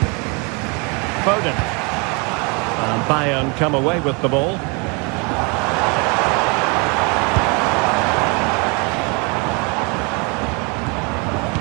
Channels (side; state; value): left; quieter; 31.6 dB